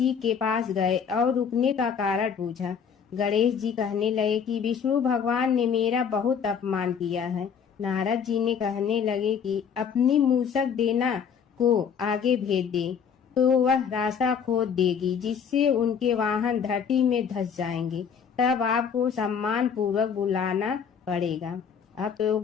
के पास गए और रुकने का कारण पूछा। गणेश जी कहने लगे कि विष्णु भगवान ने मेरा बहुत अपमान किया है। नारद जी ने कहने लगे कि अपनी मूसक देना को आगे भेज दे तो वह रास्ता खोद देगी, जिससे उनके वाहन धरती में धंस जाएंगे। तब आपको सम्मान पूर्वक बुलाना पड़ेगा। अब तो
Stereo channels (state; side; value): quieter; right; 7.1 dB